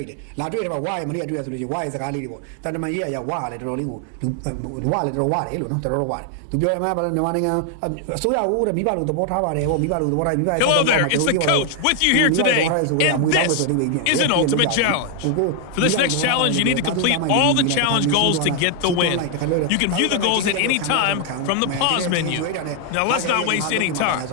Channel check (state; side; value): different; both; correlation 0.00